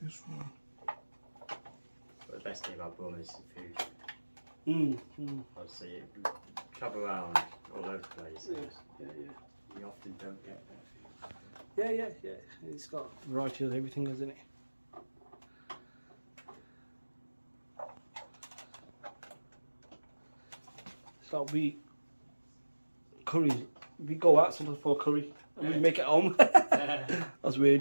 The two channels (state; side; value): inverted; both; correlation -1.00